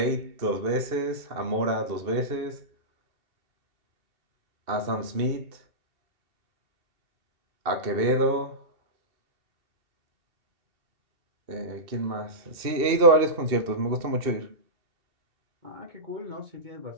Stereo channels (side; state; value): left; late; 2.6 ms